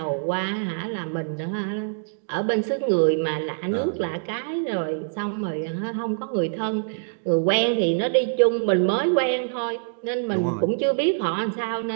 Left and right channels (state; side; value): silent; left; digital silence